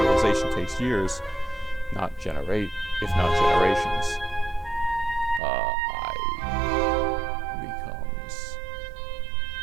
takes years, if not generations.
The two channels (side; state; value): left; drops out; at 5.4 s